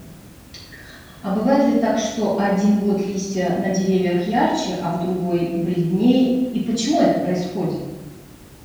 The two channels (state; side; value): identical; both; correlation 1.00